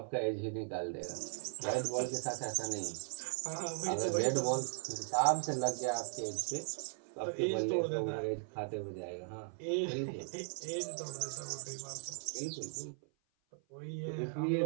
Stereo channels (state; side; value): silent; left; 53 dB below the other